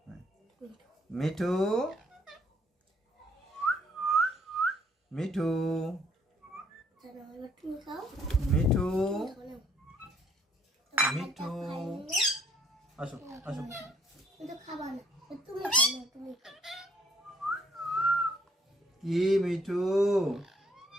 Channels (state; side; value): normal; both; correlation 0.65